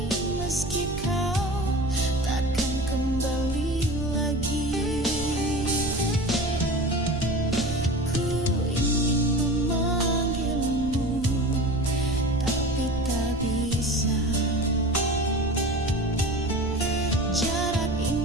meski kau takkan kembali lagi. Ku ingin memanggilmu, tapi tak bisa. Jarak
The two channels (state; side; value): noise; right; rumble, 11 dB below the sound